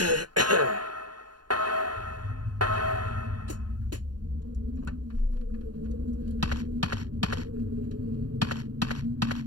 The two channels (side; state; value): left; late; 0.70 ms